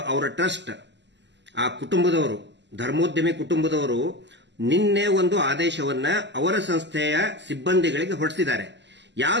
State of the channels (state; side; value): late; left; 0.51 ms